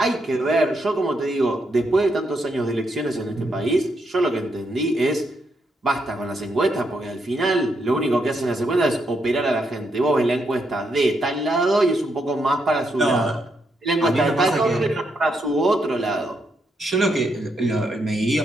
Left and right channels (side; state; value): both; normal; correlation 0.79